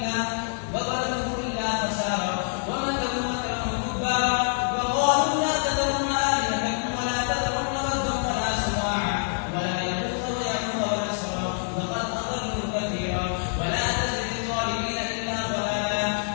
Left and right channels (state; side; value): silent; right; digital silence